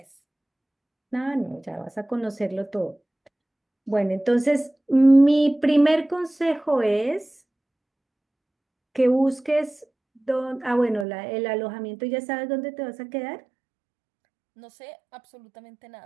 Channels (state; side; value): drops out; left; at 11.1 s